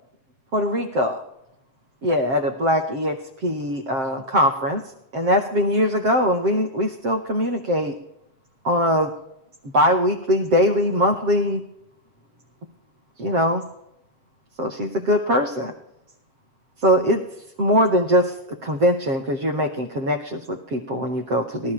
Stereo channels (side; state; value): left; late; 7.6 ms